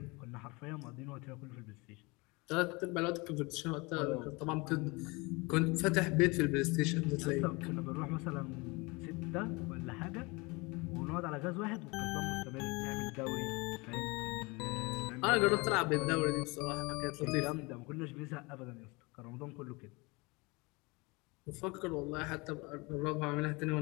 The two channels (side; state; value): right; quieter; 26.0 dB